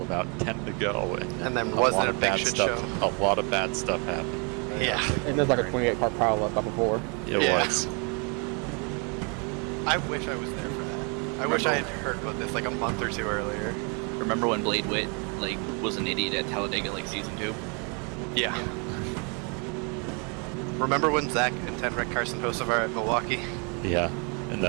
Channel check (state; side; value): quieter; left; 34.8 dB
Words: about 10 to go, And then a wasn't lot it a of big bad shit stuff, show? A lot of bad stuff happened. Yeah. And there's like a 28-car pileup up before. It was. I wish I was there for that. I wish I had heard about this like a month or 2 earlier. Remember when Blade Witt like was an idiot at Talladega like season 2? Yeah. Remember when Zach and Ted wrecked Carson Hocevar at Milwaukee? Yeah, and